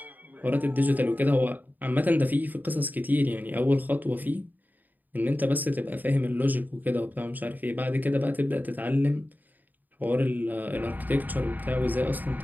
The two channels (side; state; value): left; late; 0.085 ms